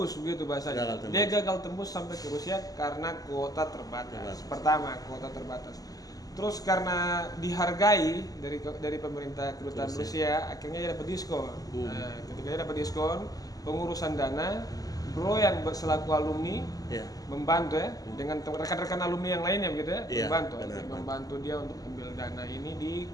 begitu bahasanya. Gagal tembus. Dia gagal tembus sampai ke Rusia karena kuota terbatas. Pertama, kuota terbatas. Terus karena dihargai dari pemerintah kedutaan Rusia, akhirnya dia dapat diskon. Nah, ketika dia dapat diskon, pengurusan dana, bro yang selaku alumni Iya. membantu ya dengan rekan-rekan alumni yang lainnya begitu ya, Iya, membantu benar. membantu dia untuk ambil dana ini di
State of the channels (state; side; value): late; right; 0.17 ms